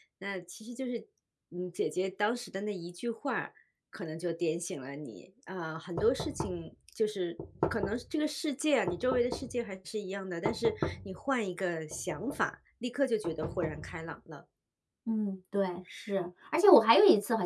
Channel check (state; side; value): identical; both; correlation 1.00